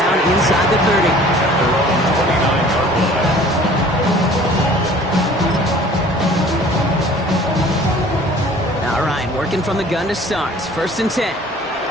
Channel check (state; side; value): normal; both; correlation 0.49